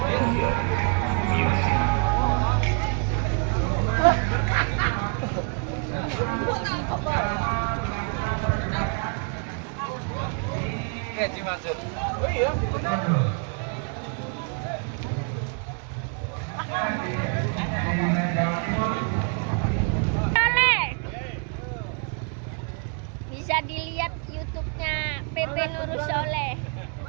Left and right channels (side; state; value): left; quieter; 39.4 dB